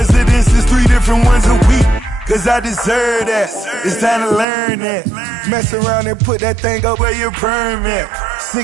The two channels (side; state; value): left; drops out; at 4.5 s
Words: 3 different ones a week. Cause I deserve that, it's time to learn that. Mess around and put that thing up where your permit.